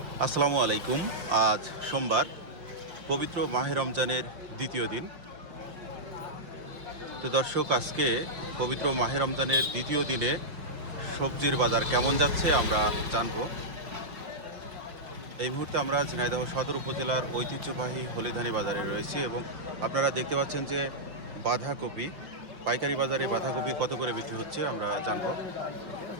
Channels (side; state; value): left; late; 5.7 ms